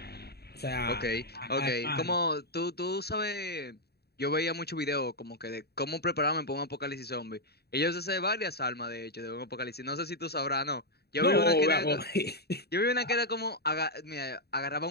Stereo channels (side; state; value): right; late; 0.47 ms